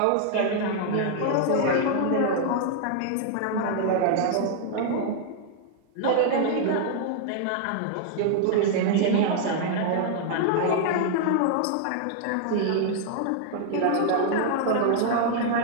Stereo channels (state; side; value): different; both; correlation 0.00